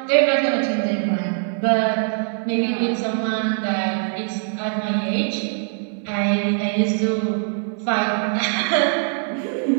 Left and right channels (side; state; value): left; silent; 64 dB below the other